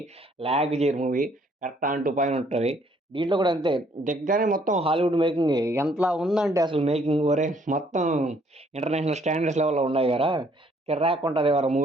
లాగ్ చేయరు movie. Correct on to point ఉంటది. దీంట్లో కూడా అంతే. దిగ్గానే మొత్తం హాలీవుడ్ మేకింగే. ఎంతలా ఉందంటే అసలు మేకింగ్ ఒరేయ్! మొత్తం ఇంటర్నేషనల్ స్టాండర్డ్స్ లెవెల్‌లో ఉన్నాయి గదా! కిర్రాకుంటది ఎవరా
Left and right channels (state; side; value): normal; both; correlation 0.64